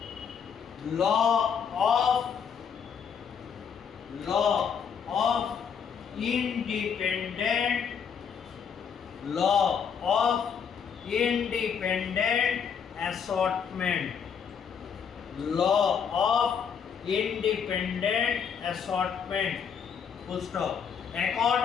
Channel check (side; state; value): right; quieter; 7.1 dB